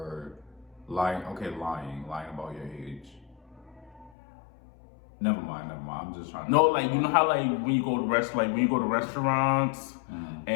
lying. Okay, lying about your age. Never mind. I'm just trying to. No, like you know how like when you go to restaurants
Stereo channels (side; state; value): right; drops out; at 4.1 s